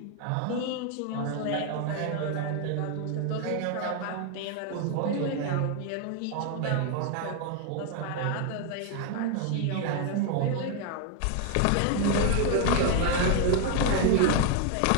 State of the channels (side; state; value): both; different; correlation 0.01